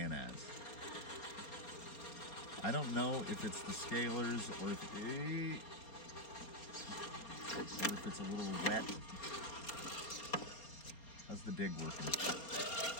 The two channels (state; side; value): late; right; 4.3 ms